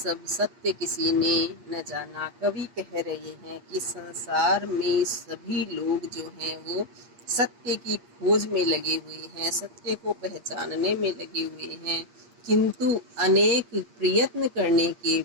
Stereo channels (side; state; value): left; late; 8.5 ms